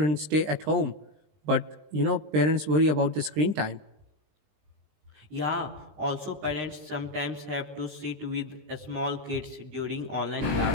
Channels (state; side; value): late; left; 20 ms